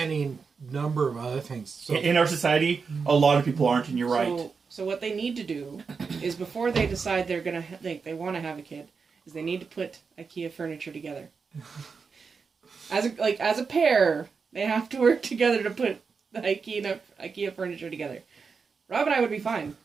number of other things. So In our society, a lot of people aren't, and you're right. So what they need to do is before they decide they're gonna they want to have a kid, is they need to put IKEA furniture together. As a pair, they have to work together to put the IKEA furniture together. Rob and I would be fine.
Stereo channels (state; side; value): quieter; left; 5.3 dB